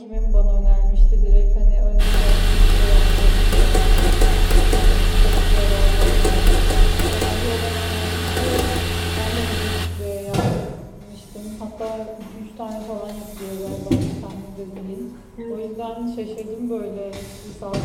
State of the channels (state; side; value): identical; both; correlation 1.00